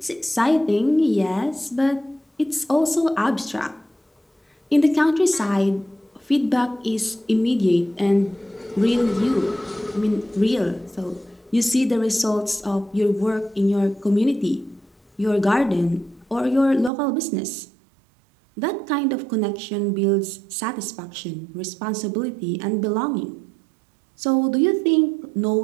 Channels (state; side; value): drops out; left; at 16.9 s